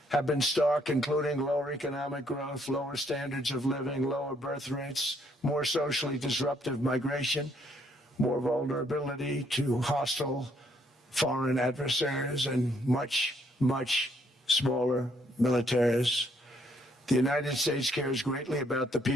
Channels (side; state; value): both; normal; correlation 0.69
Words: have been stark, including lower economic growth, lower standards of living, lower birth rates, more socially disruptive migration, more vulnerability to hostile foreign adversaries, and much, much smaller militaries. The United States cares greatly about the